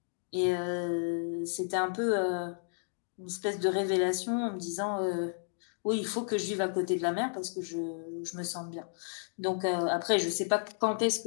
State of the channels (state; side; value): silent; right; digital silence